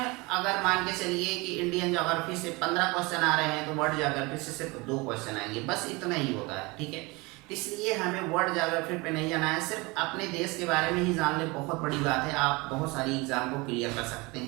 मान के चलिए कि इंडियन ज्योग्राफी से 15 क्वेश्चन आ रहे हैं, तो वर्ल्ड ज्योग्राफी से सिर्फ 2 क्वेश्चन आएंगे, बस इतना ही होता है, ठीक है। इसलिए हमें वर्ल्ड ज्योग्राफी पे नहीं जाना है, सिर्फ अपने देश के बारे में ही जान ले, बहुत बड़ी बात है। आप बहुत सारी एग्जाम को क्लियर कर सकते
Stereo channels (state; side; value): quieter; left; 25.1 dB